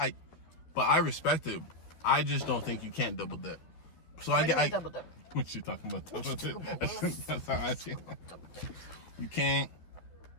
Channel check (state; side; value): late; right; 12 ms